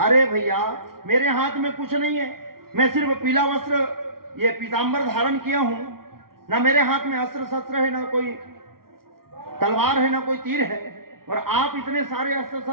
भैया मेरे हाथ में कुछ नहीं है, मैं सिर्फ पीला वस्त्र ये पीतांबर धारण किया हूं, ना मेरे हाथ में अस्त्र शस्त्र है, ना कोई तलवार है, ना कोई तीर है, और आप इतने सारे अस्त्र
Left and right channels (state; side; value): late; left; 0.93 ms